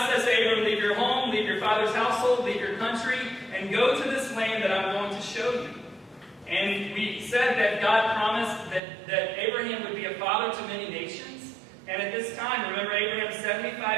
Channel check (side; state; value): left; drops out; at 8.8 s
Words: says to Abram, leave your home, leave your father's household, leave your country, and go to this land that I'm going to show you. And we said that God promised that Abraham would be a father to many nations. And at this time, remember, Abraham's